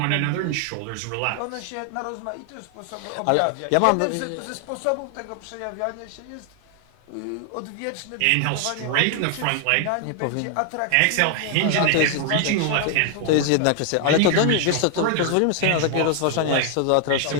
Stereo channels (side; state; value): both; different; correlation 0.00